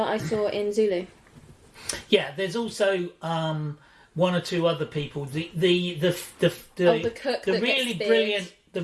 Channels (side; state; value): both; identical; correlation 1.00